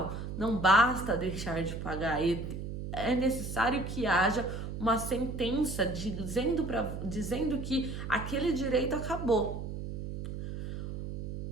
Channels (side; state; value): right; noise; hum, 6 dB below the sound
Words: Não basta deixar de pagar, é necessário que haja uma sentença dizendo que aquele direito acabou.